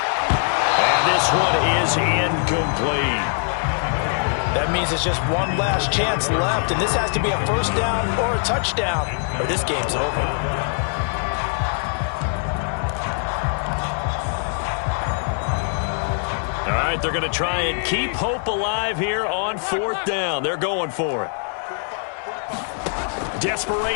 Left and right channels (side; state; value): right; silent; 64 dB below the other